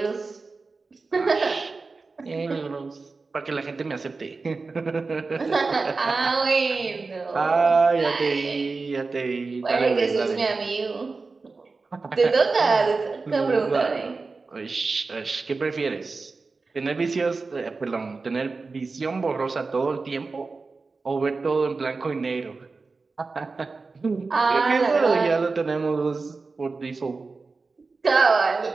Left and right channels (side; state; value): left; quieter; 4.0 dB